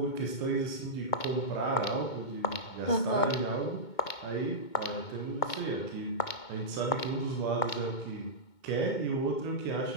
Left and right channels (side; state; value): right; late; 2.2 ms